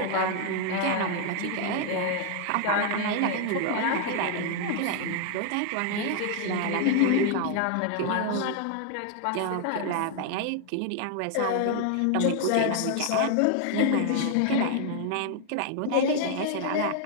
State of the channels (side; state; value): both; different; correlation 0.00